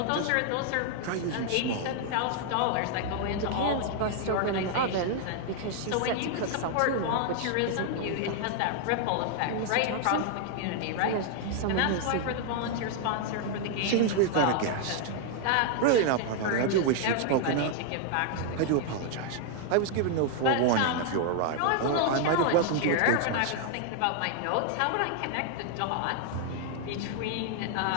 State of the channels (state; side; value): different; both; correlation 0.00